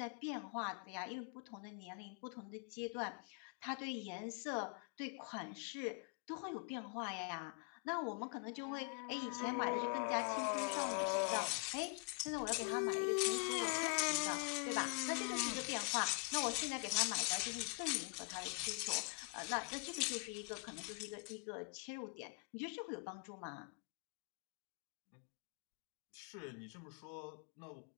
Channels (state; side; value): quieter; right; 35.0 dB